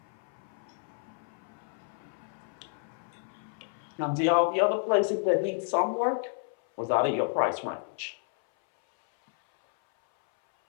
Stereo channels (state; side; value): silent; right; 57 dB below the other